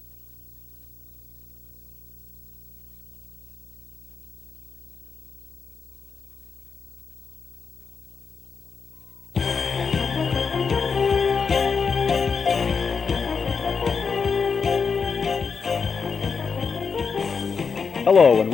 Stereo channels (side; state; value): right; quieter; 5.6 dB